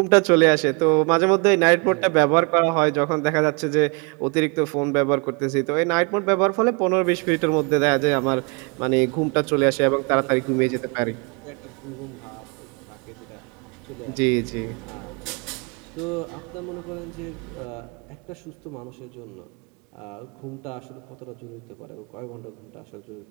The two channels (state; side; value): quieter; left; 32.0 dB